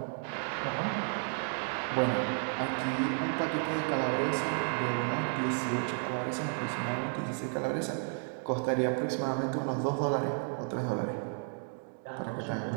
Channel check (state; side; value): silent; left; 56 dB below the other